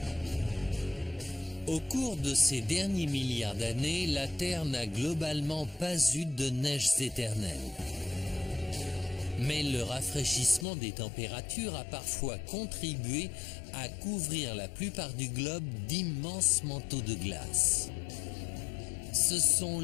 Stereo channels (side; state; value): right; drops out; at 10.7 s